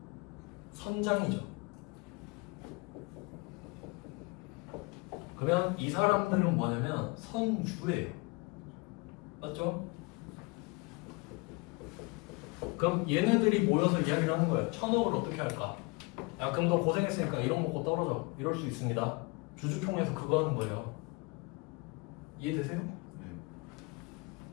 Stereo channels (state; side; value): quieter; right; 27.0 dB